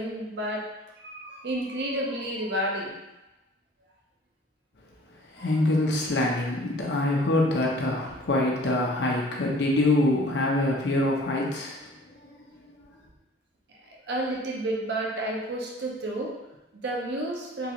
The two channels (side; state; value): both; normal; correlation 0.49